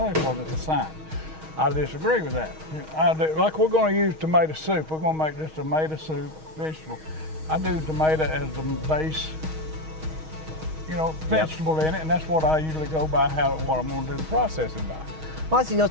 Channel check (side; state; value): left; late; 6.3 ms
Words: because it's a science. I disagree with that. Like we're going to use tomato soup. We're going to make this tomato soup vegetable. I do tomato as the base, you know, vegetable in it, and that's what I usually go by, what I'm going to do the processing by. Well, it's, you know,